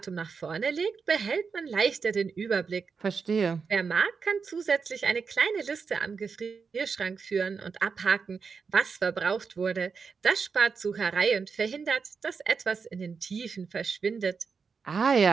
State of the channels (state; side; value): quieter; left; 5.5 dB